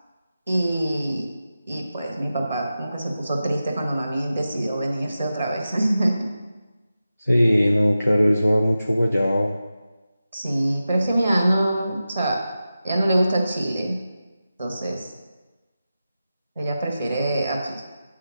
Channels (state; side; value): inverted; both; correlation -0.93